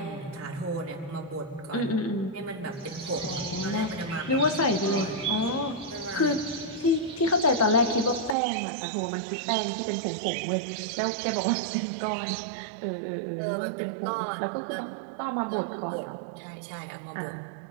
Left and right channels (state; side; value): drops out; left; at 8.3 s